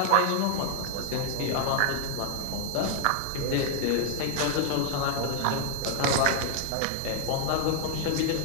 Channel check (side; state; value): both; different; correlation 0.00